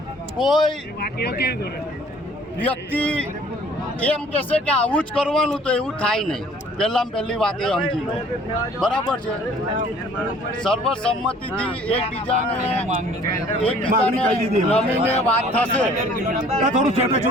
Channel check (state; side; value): normal; both; correlation 0.54